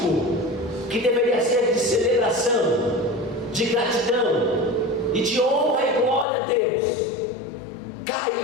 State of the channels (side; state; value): right; drops out; at 6.2 s